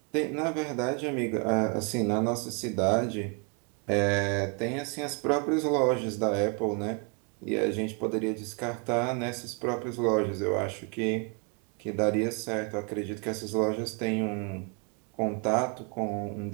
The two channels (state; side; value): quieter; left; 35.2 dB